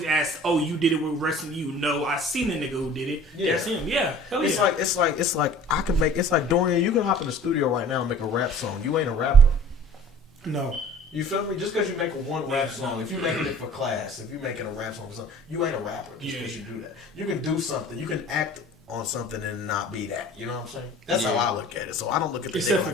asked, "Oh, you did it? We're arresting you." No, I seen the nigga who did it. Yeah. That's him. Yeah, hell It's yeah. like I can make, it's like Dorian, you can hop in the studio right now and make a rap song. You ain't a rapper. No. You feel me? Just because you make one rap song, if you're making it for class, if you're making a rap song for something, you ain't a rapper just because you do that. You can do something. You can act on something and not be that. You know what I'm saying? That's how I look at it. So I don't look at the nigga Except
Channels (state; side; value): normal; both; correlation 0.47